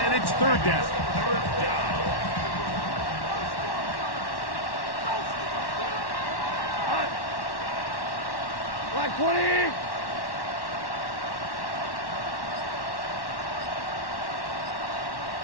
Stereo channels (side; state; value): right; late; 1.1 ms